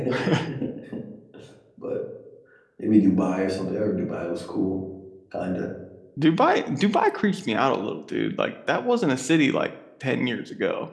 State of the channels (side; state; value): both; identical; correlation 1.00